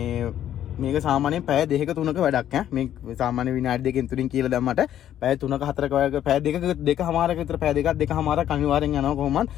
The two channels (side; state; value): right; quieter; 11.1 dB